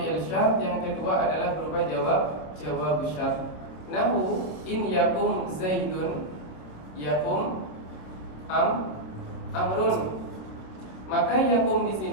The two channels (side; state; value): right; late; 26 ms